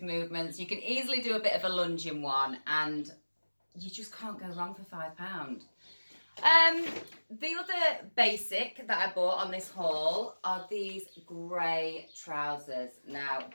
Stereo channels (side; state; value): both; inverted; correlation -1.00